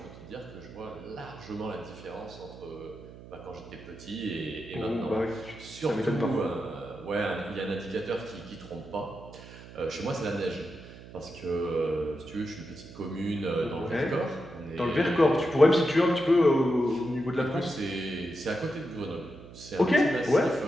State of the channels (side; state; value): right; noise; hum, 16 dB below the sound